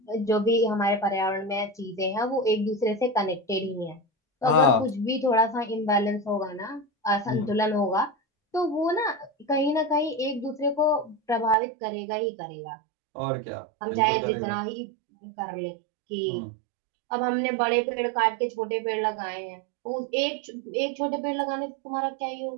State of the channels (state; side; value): drops out; left; at 11.6 s